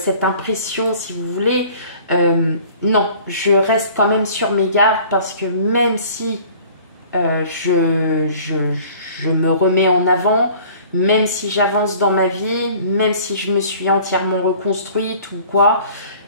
impression, si vous voulez, non, je reste quand même sur mes gardes parce que même si je me remets en avant, même si j'avance dans ma vie, même si je me suis entièrement reconstruite ou quoi,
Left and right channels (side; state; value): both; inverted; correlation -0.49